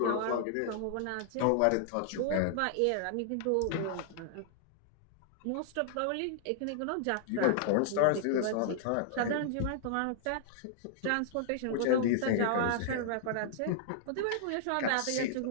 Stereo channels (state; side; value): different; both; correlation -0.01